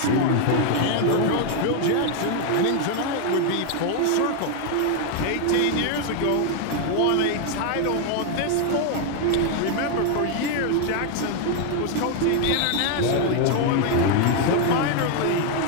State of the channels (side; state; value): both; different; correlation 0.01